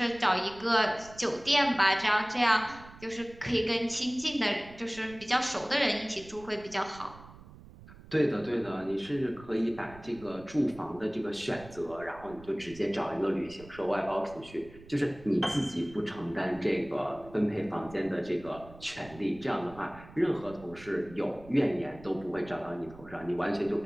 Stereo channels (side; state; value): right; noise; rumble, 19 dB below the sound